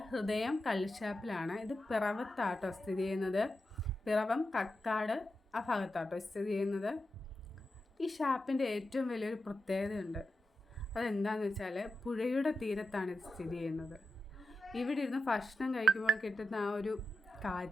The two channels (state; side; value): normal; both; correlation 0.90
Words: ഹൃദയം കള്ളുഷാപ്പിലാണ്. ഇത് പിറവത്താട്ടോ സ്ഥിതി ചെയ്യുന്നത്. പിറവം കക്കാട് ആ ഭാഗത്താട്ടോ സ്ഥിതി ചെയ്യുന്നത്. ഈ ഷാപ്പിൻ്റെ ഏറ്റവും വലിയൊരു പ്രത്യേകതയുണ്ട്. അതെന്താണെന്ന് വെച്ചാൽ പുഴയുടെ തീരത്താണ് ഇത് സ്ഥിതി ചെയ്യുന്നത്. ഇവിടെ ഇരുന്ന് ഭക്ഷണം കഴിക്കുമ്പോൾ കിട്ടുന്ന ആ ഒരു